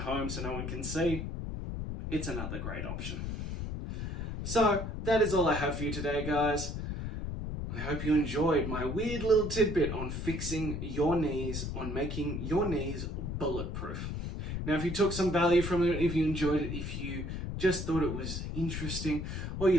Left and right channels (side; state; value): left; noise; rumble, 4 dB below the sound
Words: so no one can see, it's another great option. So that is all I have for you today, guys. I hope you enjoyed my weird little tidbit on fixing your knees, on making your knees bulletproof. Now, if you took some value from it, if you enjoyed it, if you just thought it was interesting, or